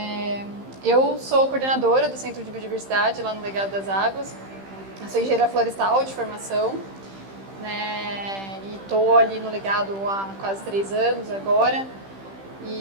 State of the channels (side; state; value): left; late; 15 ms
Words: Eu sou coordenadora do Centro de Biodiversidade lá no Legado das Águas. Eu sou engenheira florestal de formação, né, e estou ali no Legado há quase 3 anos agora.